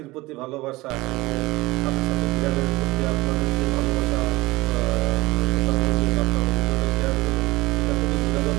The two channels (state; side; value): quieter; left; 20.5 dB